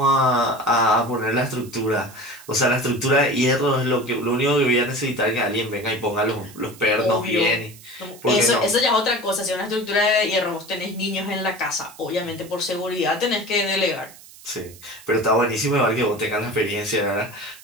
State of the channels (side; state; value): right; noise; hiss, 20 dB below the sound